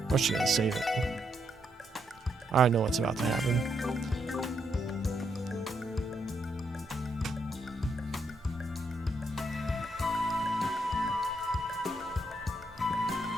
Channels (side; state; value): both; normal; correlation 0.77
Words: What's she gonna save it? I know what's about to happen.